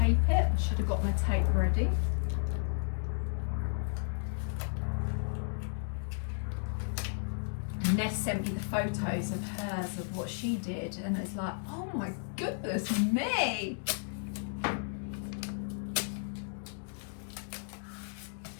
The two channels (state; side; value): silent; right; digital silence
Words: it. Should have got my tape ready. Ness sent me the photos of hers of what she did, and it's like, oh my goodness me!